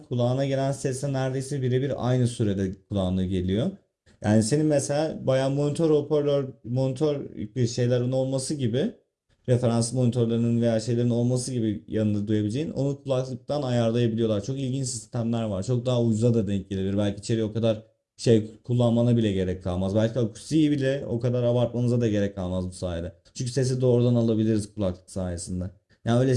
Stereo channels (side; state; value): both; identical; correlation 1.00